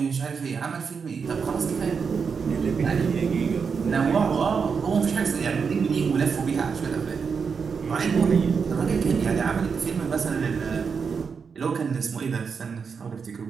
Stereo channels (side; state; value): left; quieter; 5.8 dB